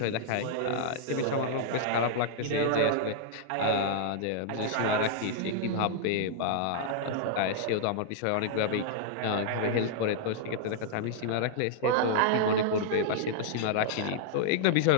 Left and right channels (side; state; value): both; different; correlation -0.01